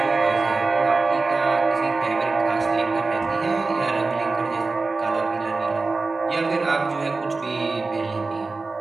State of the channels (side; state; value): left; quieter; 3.8 dB